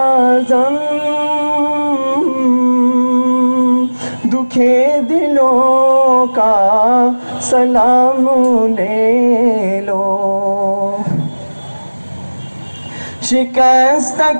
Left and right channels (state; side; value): inverted; both; correlation -1.00